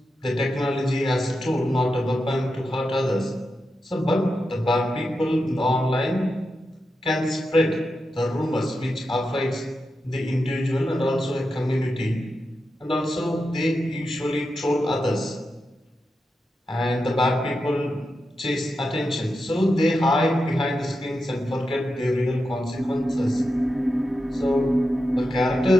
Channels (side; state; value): both; normal; correlation 0.89